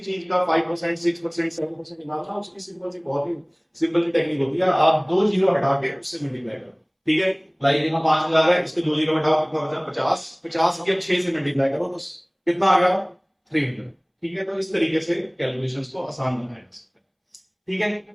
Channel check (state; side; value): identical; both; correlation 1.00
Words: का 5% 6% 7% निकालना, उसकी सिंपल सी बहुत ही सिंपल सी टेक्निक होती है, आप 2 जीरो हटा के उससे मल्टीप्लाई करो। ठीक है, लाइक यहाँ 5000 है, इसके 2 जीरो हटाओ, कितना बचा 50, 50 के 6 से मल्टीप्लाई करो तो कितना आ गया 300। ठीक है, तो इस तरीके से कैलकुलेशंस को आसान बनाया जा सकता है। ठीक है,